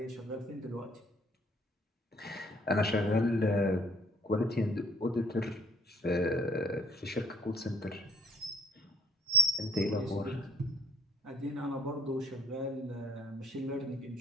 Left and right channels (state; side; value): normal; both; correlation 0.56